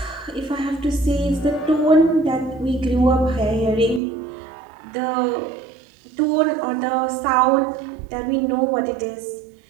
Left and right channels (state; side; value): drops out; left; at 4.0 s